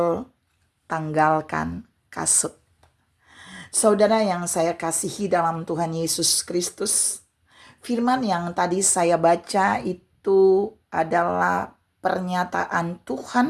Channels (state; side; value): identical; both; correlation 1.00